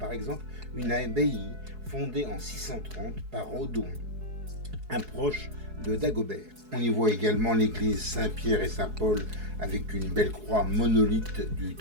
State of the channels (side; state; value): left; late; 4.7 ms